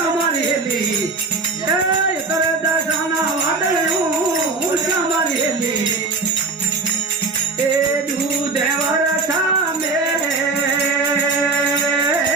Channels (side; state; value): left; quieter; 3.9 dB